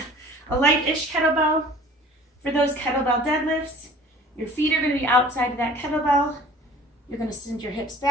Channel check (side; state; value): both; normal; correlation 0.48